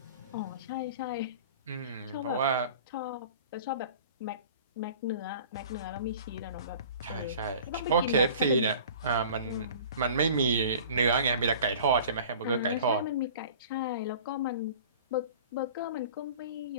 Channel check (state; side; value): inverted; both; correlation -0.44